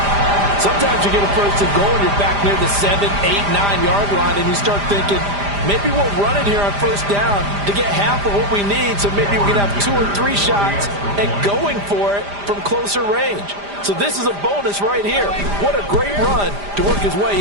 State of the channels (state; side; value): late; left; 5.0 ms